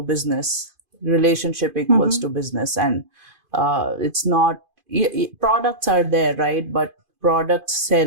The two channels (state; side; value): late; left; 2.5 ms